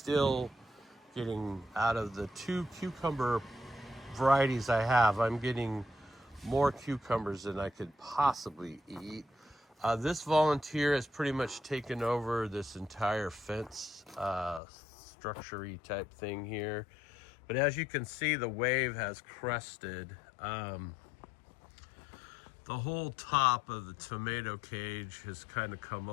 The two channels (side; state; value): right; drops out; at 14.6 s